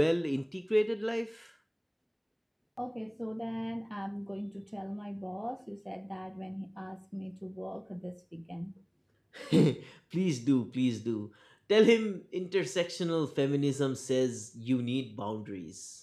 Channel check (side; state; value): both; identical; correlation 1.00